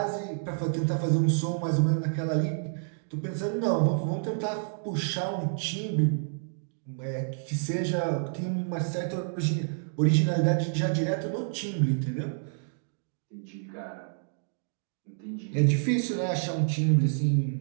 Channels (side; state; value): left; silent; digital silence